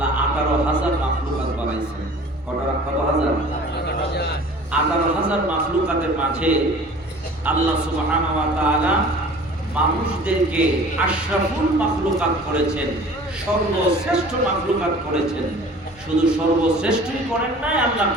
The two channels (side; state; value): both; normal; correlation 0.45